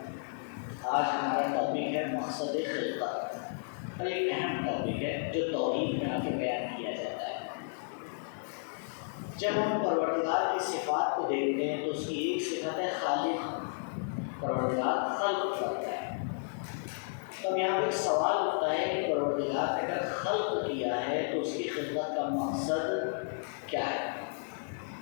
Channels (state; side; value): silent; right; digital silence